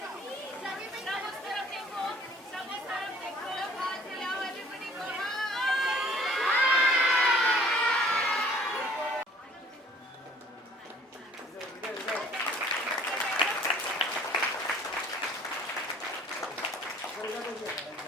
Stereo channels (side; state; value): both; normal; correlation 0.54